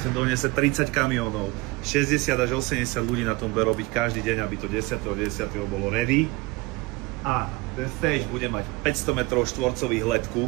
donese 30 kamiónov, 60 až 80 ľudí na tom bude robiť každý deň, aby to 10.10. bolo ready. A ten stage bude mať 500 metrov štvorcových letku,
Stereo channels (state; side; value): quieter; left; 23.6 dB